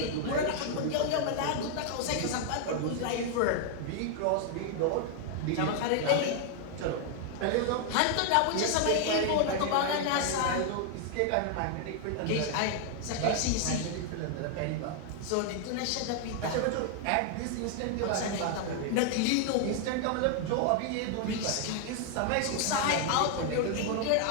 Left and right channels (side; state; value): both; different; correlation 0.00